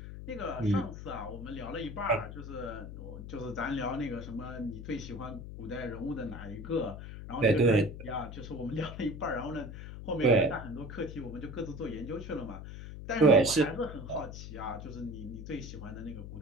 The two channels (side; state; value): left; noise; hum, 10 dB below the sound